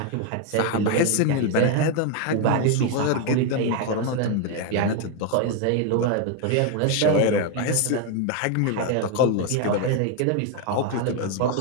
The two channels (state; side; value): different; both; correlation 0.01